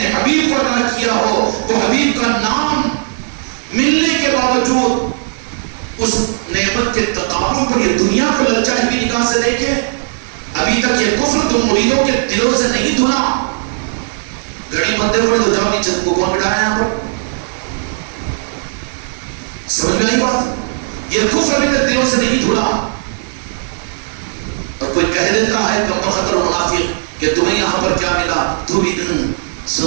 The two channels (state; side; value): silent; left; digital silence